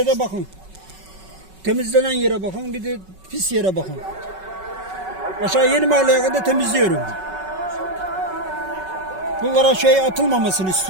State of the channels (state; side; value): late; left; 5.3 ms